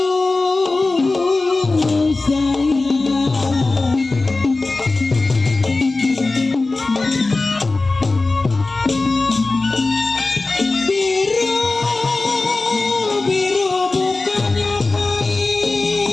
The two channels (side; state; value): right; quieter; 3.4 dB